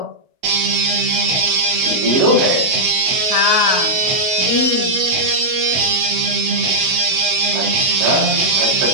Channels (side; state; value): left; late; 7.8 ms